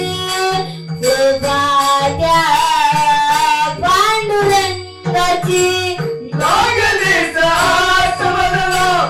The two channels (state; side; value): identical; both; correlation 1.00